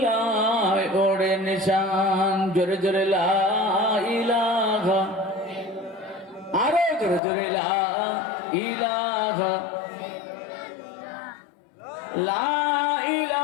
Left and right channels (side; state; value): right; drops out; at 7.2 s